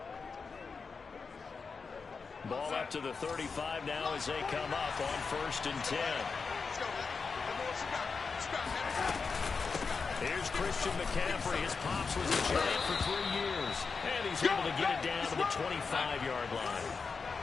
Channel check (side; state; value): right; quieter; 4.9 dB